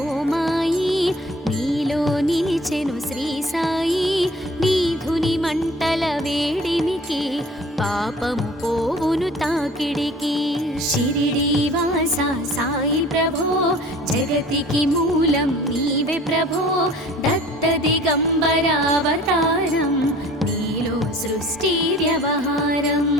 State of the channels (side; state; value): both; normal; correlation 0.48